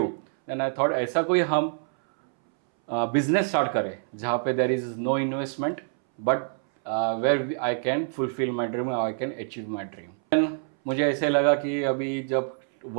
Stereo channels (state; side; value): silent; left; 61 dB below the other